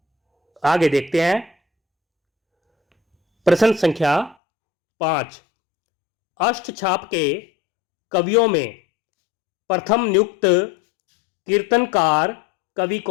आगे देखते हैं प्रश्न संख्या 5। अष्टछाप के कवियों में प्रथम नियुक्त कीर्तनकार कवि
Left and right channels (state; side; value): drops out; right; at 4.4 s